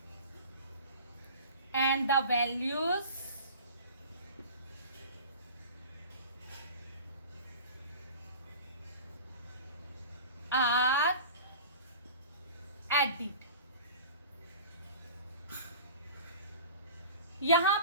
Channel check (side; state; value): both; inverted; correlation -0.38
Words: and the values are added। यहां